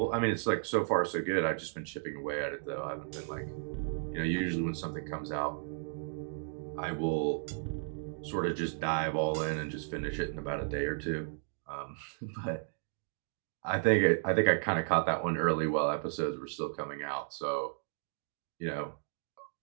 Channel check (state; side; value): silent; left; digital silence